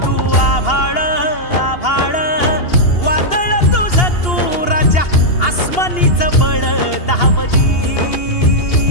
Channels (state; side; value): late; right; 2.8 ms